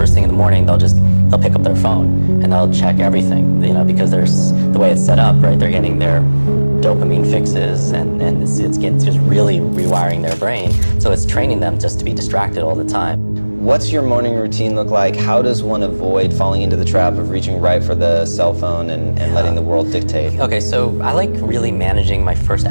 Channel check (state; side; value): inverted; both; correlation -1.00